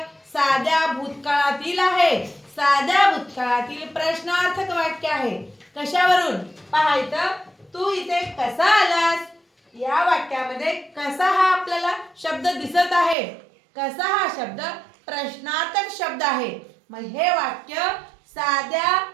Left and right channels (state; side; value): drops out; left; at 13.2 s